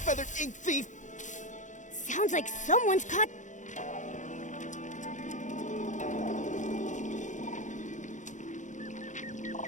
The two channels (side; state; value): right; late; 0.36 ms